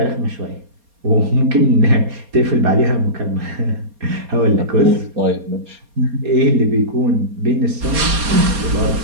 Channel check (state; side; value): late; left; 4.2 ms